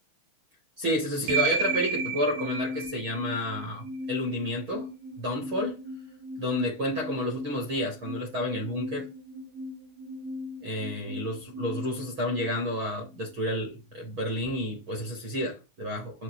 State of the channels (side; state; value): left; late; 6.3 ms